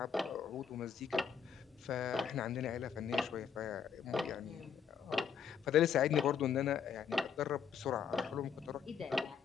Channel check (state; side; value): quieter; right; 7.3 dB